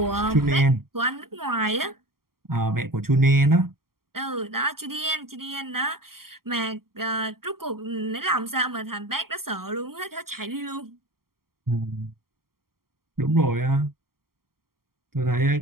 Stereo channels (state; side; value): late; left; 0.93 ms